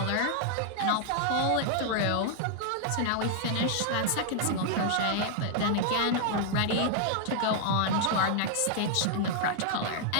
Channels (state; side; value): different; both; correlation 0.00